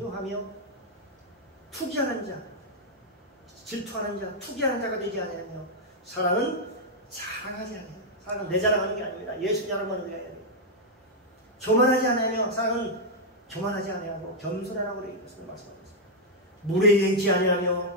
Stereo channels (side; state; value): both; normal; correlation -0.04